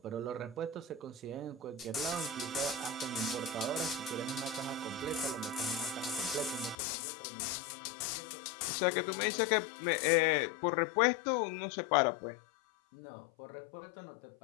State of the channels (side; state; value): right; drops out; at 6.8 s